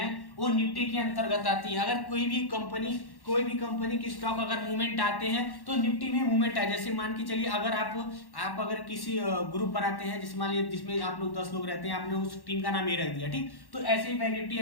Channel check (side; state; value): right; late; 1.1 ms